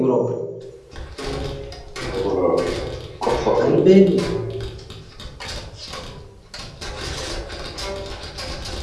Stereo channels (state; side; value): identical; both; correlation 1.00